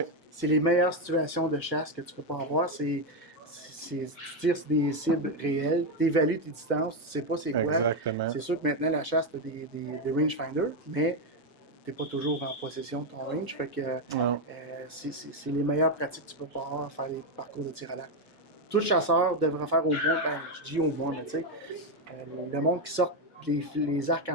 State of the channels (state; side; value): normal; both; correlation 0.07